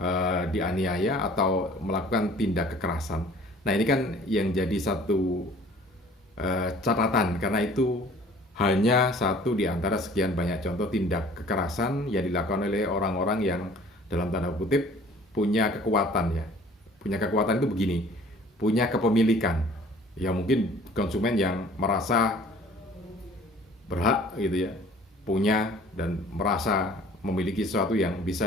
dianiaya atau melakukan tindak kekerasan. Nah ini kan yang jadi satu catatan, karena itu hanya satu di antara sekian banyak contoh tindak kekerasan yang dilakukan oleh orang-orang yang dalam tanda kutip punya kekuatan ya. Punya kekuatan itu begini, punya kepemilikan. Ya mungkin konsumen yang merasa berhak gitu ya, punya dan merasa memiliki sesuatu yang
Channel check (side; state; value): both; normal; correlation 0.51